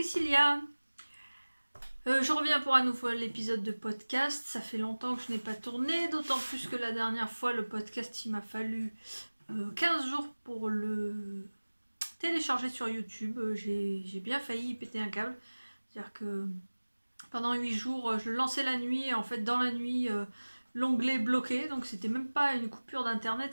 Je reviens pour un nouvel épisode de podcast. Ça fait longtemps que je n'ai pas tourné, d'autant plus que la dernière fois, le podcast, il m'a fallu 15 jours pour le télécharger sur YouTube. J'ai bien failli péter un câble. C'est-à-dire que pendant 8 jours, je le lançais la nuit, et en fait, dans la nuit, l'onglet bloqué. Donc, c'était même pas une coupure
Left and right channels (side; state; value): both; inverted; correlation -1.00